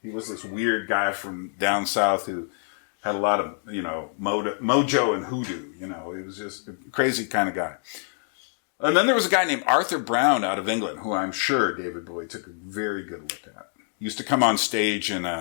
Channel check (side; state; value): right; silent; 61 dB below the other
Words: He was this weird guy from down south who had a lot of, mojo and hoodoo. He was just a crazy kind of guy. And then there was a guy named Arthur Brown out of England, who I'm sure David Bowie took a very good look at. He used to come on stage in